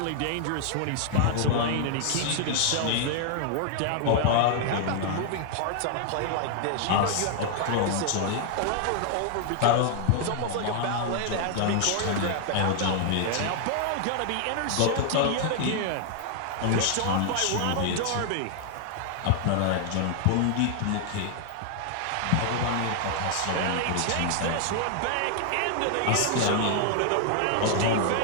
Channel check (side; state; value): both; different; correlation 0.00